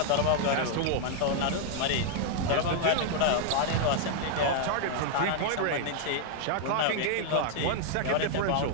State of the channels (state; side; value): different; both; correlation 0.00